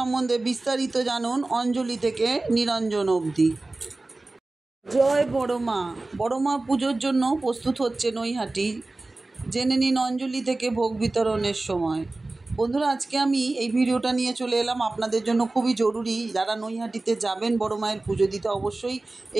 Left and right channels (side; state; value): left; quieter; 3.1 dB